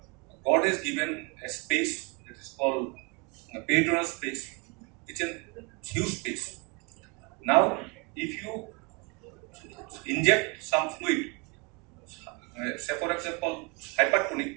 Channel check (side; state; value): left; quieter; 29.8 dB